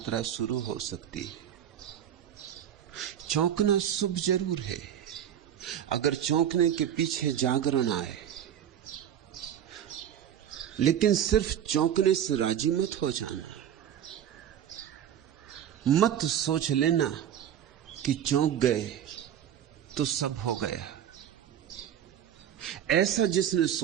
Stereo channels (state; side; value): quieter; left; 9.9 dB